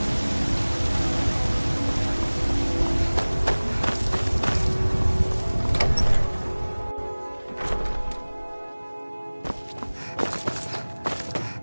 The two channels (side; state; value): both; inverted; correlation -1.00